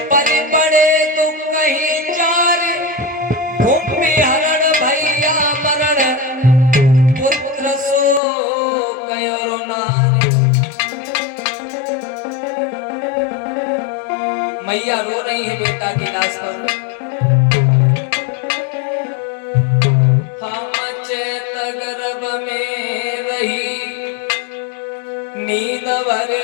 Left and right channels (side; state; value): right; drops out; at 8.2 s